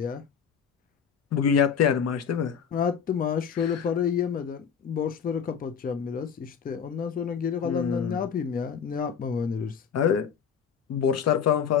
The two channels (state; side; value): quieter; right; 7.3 dB